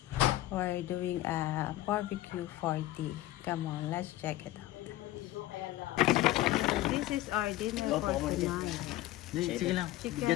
We're doing a barbecue 40. Come on, let's check it out. This is our dinner for tonight. Chicken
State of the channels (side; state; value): right; quieter; 15.7 dB